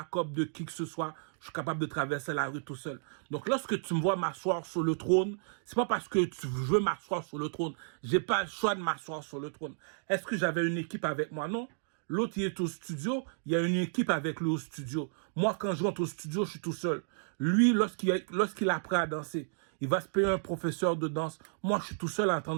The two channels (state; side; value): silent; left; digital silence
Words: de qui que ce soit. Je suis capable de traverser la rue tout seul. Donc, lorsque tu me vois m'asseoir sur le trône, c'est pas parce que tu veux m'asseoir sur le trône. J'ai pas le choix de m'asseoir sur le trône. Est-ce que j'avais une équipe avec moi? Non. L'autre, il est au studio. Il y a une équipe avec lui au studio. Moi, quand je rentre au studio, je suis tout seul. Lui, lorsqu'il apprend à danser, il va se payer un professeur de danse. Moi, je suis tout seul en train